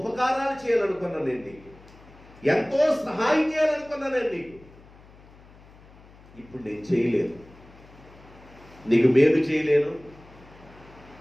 చేయాలనుకున్నాను నేను నీకు, ఎంతో సహాయం చేయాలనుకున్నాను నేను నీకు, ఇప్పుడు నేను చేయలేదు. నీకు మేలు చేయలేను,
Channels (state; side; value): noise; left; hum, 23 dB below the sound